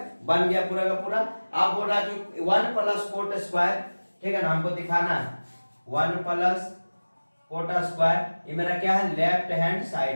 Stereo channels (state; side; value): inverted; both; correlation -1.00